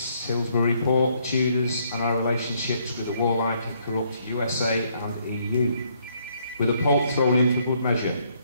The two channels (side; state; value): both; inverted; correlation -0.70